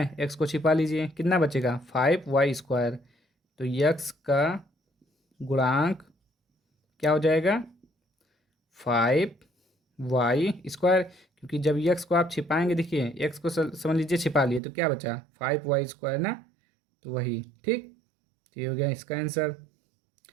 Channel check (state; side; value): drops out; left; at 14.6 s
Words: x को छिपा लीजिए कितना बचेगा 5y²। तो x का गुणांक क्या हो जाएगा 5y², क्योंकि जब यक्स को आप छिपाएंगे, देखिए एक्स को समझ लीजिए छिपा लिए तो क्या बचा 5y² ना, तो वही। ठीक, तो ये हो गया इसका आंसर।